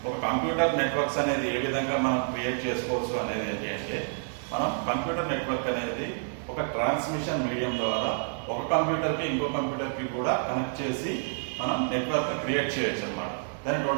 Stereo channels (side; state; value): left; silent; digital silence